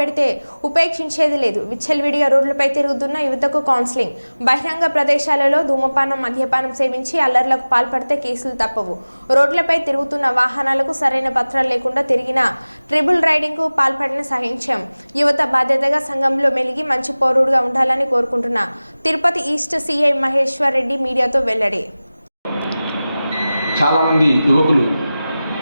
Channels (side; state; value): both; inverted; correlation -0.98